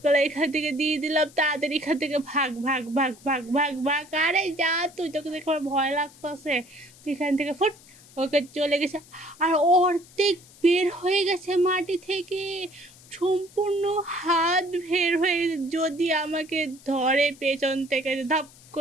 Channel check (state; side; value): noise; left; hiss, 24 dB below the sound